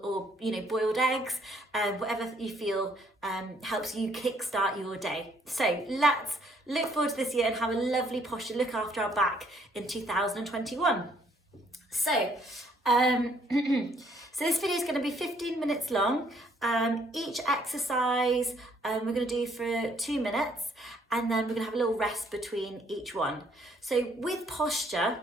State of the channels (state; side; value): normal; both; correlation 0.66